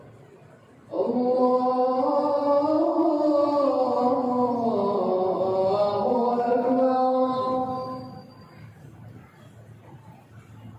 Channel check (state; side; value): identical; both; correlation 1.00